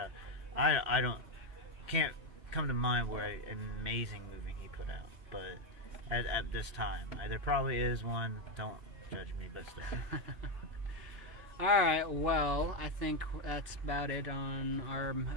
Can't come to mind where an amazing movie he put out, but at this time there probably is one. Don't judge me, but still. Alright, well, I think that's about it on our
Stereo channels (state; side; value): late; left; 3.1 ms